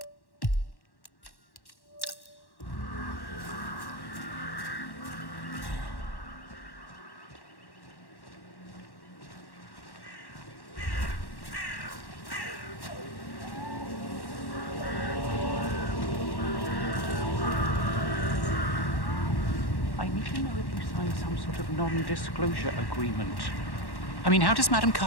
need to know if you signed some sort of non-disclosure agreement. I mean, how does Madame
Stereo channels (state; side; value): late; right; 1.1 ms